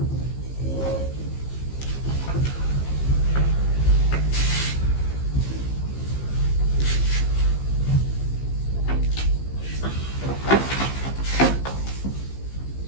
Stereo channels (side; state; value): right; late; 15 ms